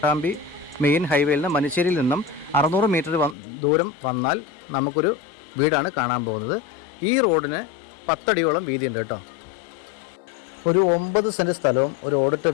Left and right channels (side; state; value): right; drops out; at 3.4 s